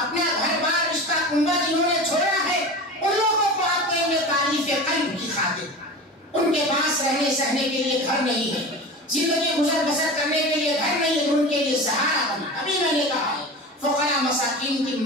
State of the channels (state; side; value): normal; both; correlation 0.32